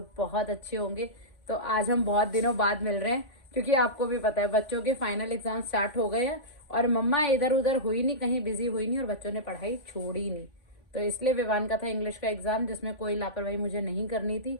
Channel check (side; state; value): right; late; 3.5 ms